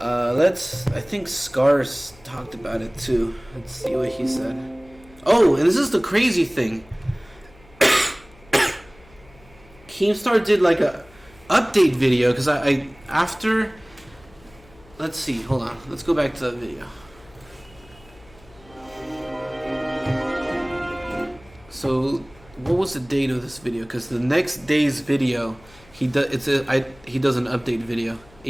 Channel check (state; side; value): noise; left; hum, 26 dB below the sound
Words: think Scars talked about it too. Let's see what he said. Oh, and this is the crazy thing. Keemstar did like a update video because I after. Let's see. Hold on. Let's go back to that video. So, what was the date of this video? Because the next day's video, he does an update video,